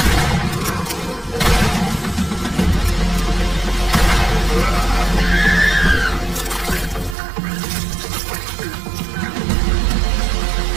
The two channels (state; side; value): drops out; left; at 7.2 s